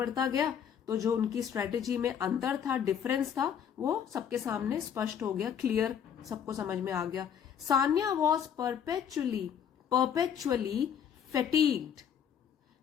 गया तो जो उनकी स्ट्रेटेजी में अंतर था, डिफरेंस था, वो सबके सामने स्पष्ट हो गया, क्लियर, सबको समझ में आ गया। Sania was perpetually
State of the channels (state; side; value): quieter; right; 8.3 dB